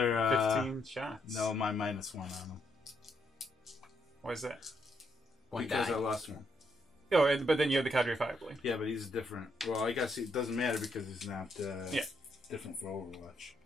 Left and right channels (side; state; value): both; normal; correlation 0.76